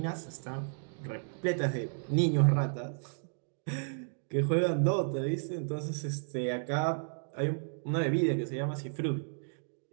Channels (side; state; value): left; silent; digital silence